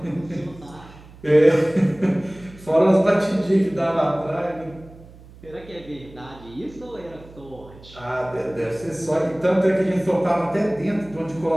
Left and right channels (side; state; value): right; noise; hum, 21 dB below the sound